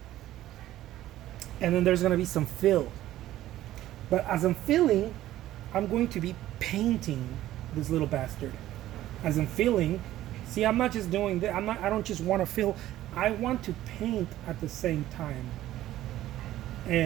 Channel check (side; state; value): left; quieter; 14.1 dB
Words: And then there's going to be some fill. But as I'm filling, I'm going to be painting this little bastard. As I'm filling, see, I'm not just doing that. I don't just want to fill. I want to paint at the same time.